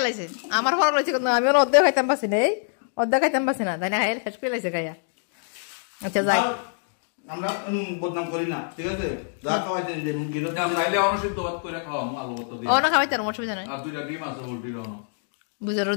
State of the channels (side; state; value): right; silent; digital silence